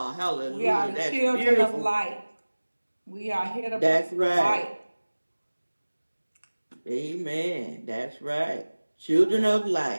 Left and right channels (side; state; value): both; inverted; correlation -1.00